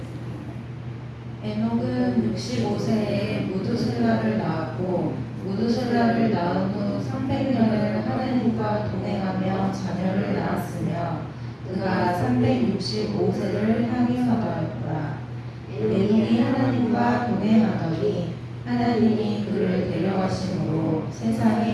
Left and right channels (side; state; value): both; identical; correlation 1.00